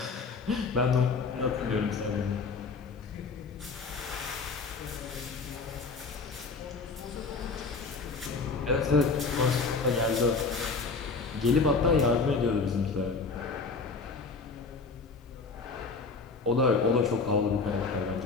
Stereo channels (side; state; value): right; quieter; 4.3 dB